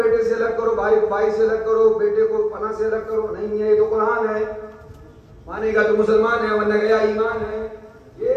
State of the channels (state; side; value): identical; both; correlation 1.00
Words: سے الگ کرو، بھائی کو بھائی سے الگ کرو، بیٹے کو پناہ سے الگ کرو؟ نہیں ہے، یہ تو قرآن ہے. مانے گا تو مسلمان ہے ورنہ گیا ایمان ہے. یہ